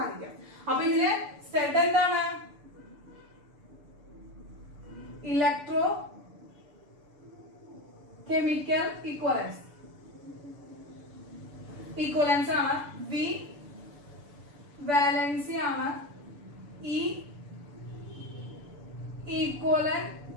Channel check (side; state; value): left; late; 6.9 ms